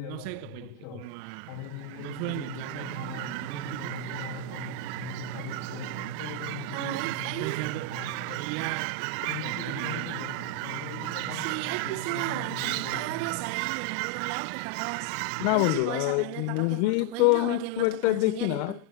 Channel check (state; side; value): different; both; correlation 0.00